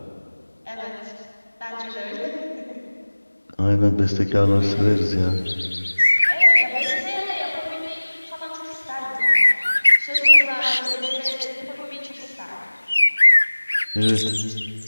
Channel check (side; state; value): both; inverted; correlation -1.00